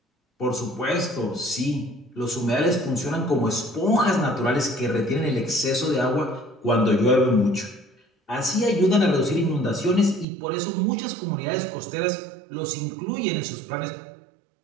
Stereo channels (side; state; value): left; drops out; at 10.2 s